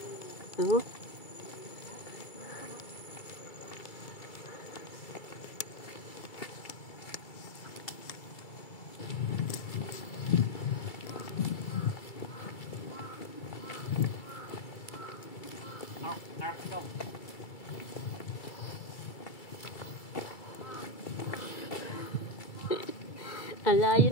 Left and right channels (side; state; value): right; late; 2.3 ms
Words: Oh. Ang layo